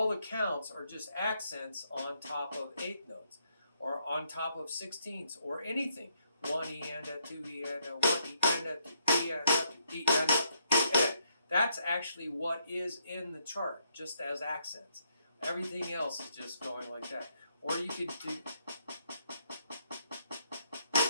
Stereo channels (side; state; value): both; inverted; correlation -0.74